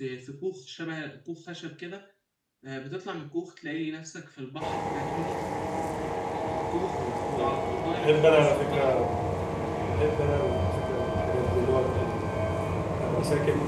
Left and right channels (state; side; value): identical; both; correlation 1.00